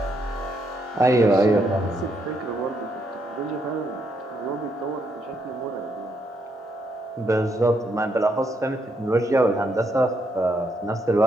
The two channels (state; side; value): normal; both; correlation 0.76